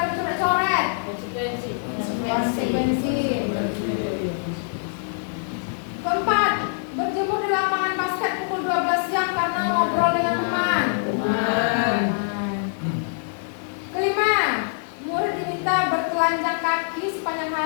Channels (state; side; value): silent; right; digital silence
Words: dicoret-coret. Konsekuensi. Keempat, berjemur di lapangan basket pukul 12 siang karena ngobrol dengan teman. Kelima, murid diminta bertelanjang kaki sepanjang